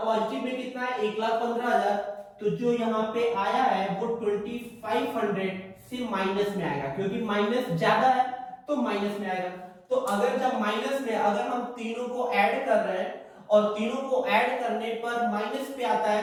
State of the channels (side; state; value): both; identical; correlation 1.00